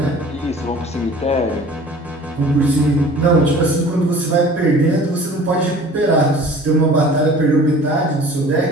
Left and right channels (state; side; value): normal; both; correlation 0.46